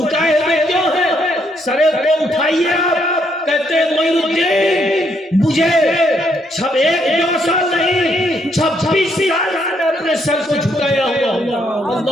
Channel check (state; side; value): normal; both; correlation 0.73